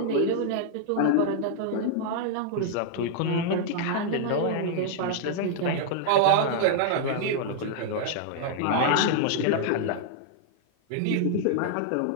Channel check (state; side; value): different; both; correlation -0.01